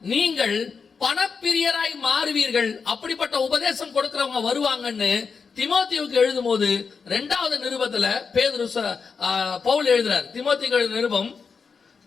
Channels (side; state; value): right; quieter; 5.5 dB